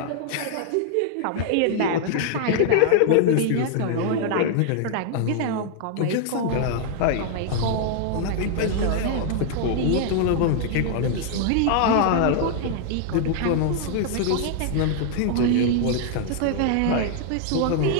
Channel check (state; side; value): different; both; correlation -0.01